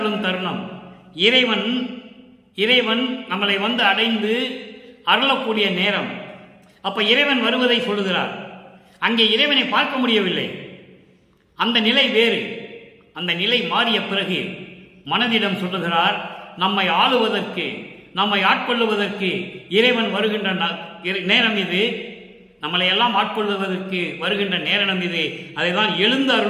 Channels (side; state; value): both; identical; correlation 1.00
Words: தருணம். இறைவன் நம்மளை அடைந்து அருளக்கூடிய நேரம். அப்ப இறைவன் வருவதை சொல்லுகிறார். அங்கே இறைவனை பார்க்க முடியவில்லை, அந்த நிலை வேறு. அந்த நிலை மாறிய பிறகு மனதிடம் சொல்லுகிறார், நம்மை ஆளுவதற்கு, நம்மை ஆட்கொள்ளுவதற்கு இறைவன் வருகின்ற நேரம் இது, நம்மளை எல்லாம் ஆட்கொள்வதற்கு வருகின்ற நேரம் இது. அதைதான் எழுந்து